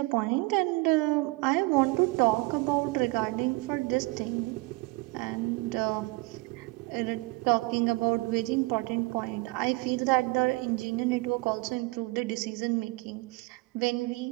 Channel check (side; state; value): left; quieter; 24.2 dB